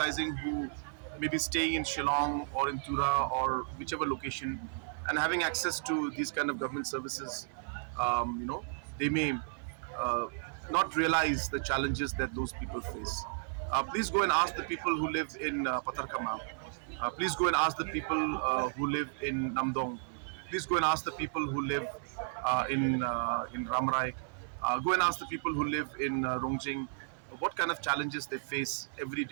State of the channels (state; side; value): silent; left; 55 dB below the other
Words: who may be staying in Shillong or in Tura or whichever location and having access to these kind of government services. They may uh, not realize the challenges that those people face. Please go and ask the people who live in Patarkama. Please go and ask the people who live in Namdong. Please go and ask the people who live in Ramrai. Go and ask the people who live in Rongjing what kind of challenges they face every